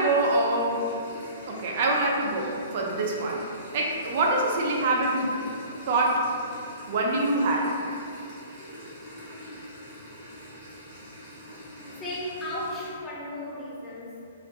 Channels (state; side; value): inverted; both; correlation -0.42